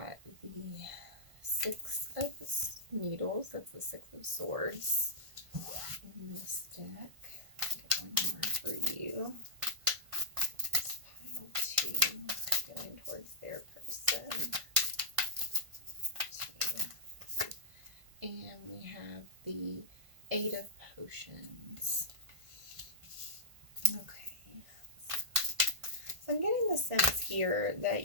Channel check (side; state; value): left; late; 1.5 ms